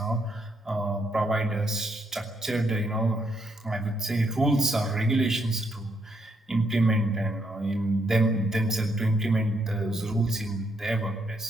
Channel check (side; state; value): both; normal; correlation 0.75